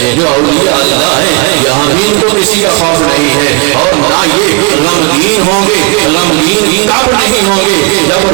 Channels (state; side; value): quieter; left; 28.4 dB